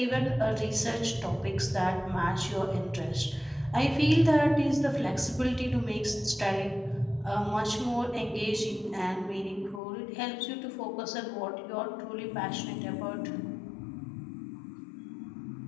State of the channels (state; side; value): drops out; right; at 9.8 s